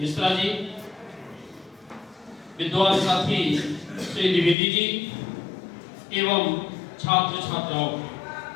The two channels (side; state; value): right; drops out; at 4.5 s